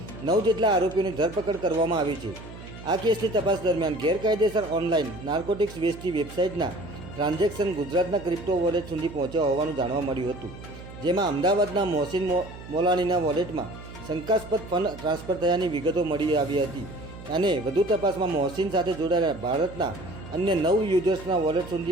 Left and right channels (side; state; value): right; noise; hum, 15 dB below the sound